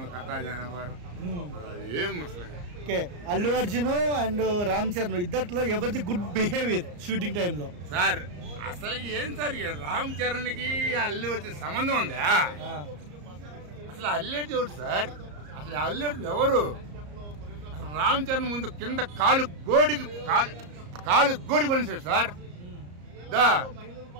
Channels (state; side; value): late; left; 34 ms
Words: కథ, దాని వ్యవహారం ఏం అసలు. అల్లు అర్జున్ అండ్ రామ్ చరణ్ ఇద్దట్లో ఎవరిది గుడ్ బిహేవియర్ షూటింగ్ టైంలో సార్? అసలు ఏం సార్ రామ్ చరణ్ కి అల్లు అర్జున్ సంబంధం ఉందా? అసలు అల్లు అర్జున్ ఎవరు సార్? అసలు అల్లు అర్జున్ ఎవరు? రామ్ చరణ్ ముందు కింద కాలు గోడికి పనిచేశాడు సార్.